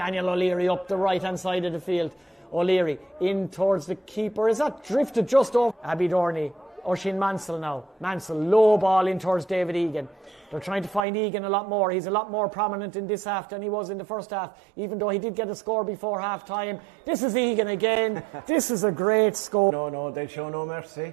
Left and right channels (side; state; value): left; drops out; at 11.0 s